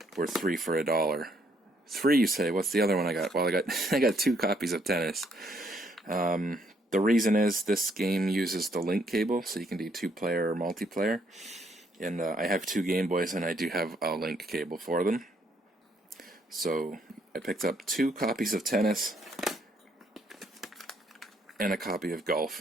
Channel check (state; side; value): normal; both; correlation 0.70